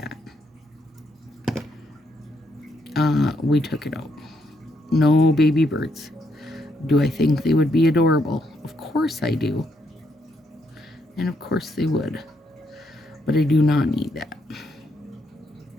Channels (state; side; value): normal; both; correlation 0.76